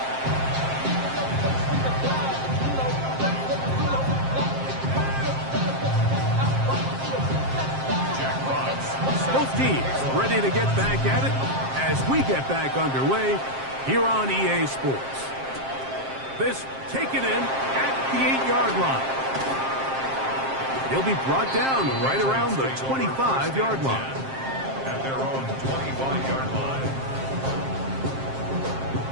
Both teams ready to get back at it as we get back underway here on EA Sports. This taken in at the 8-yard line. He'll be brought down right around the 25-yard line. At their own 25-yard line.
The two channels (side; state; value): left; late; 7.5 ms